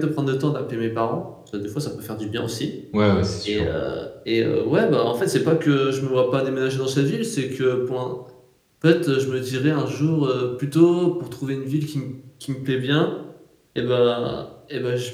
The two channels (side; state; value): both; identical; correlation 1.00